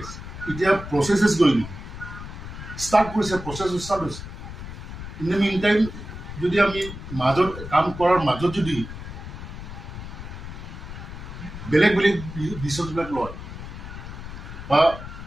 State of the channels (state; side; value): noise; left; rumble, 10 dB below the sound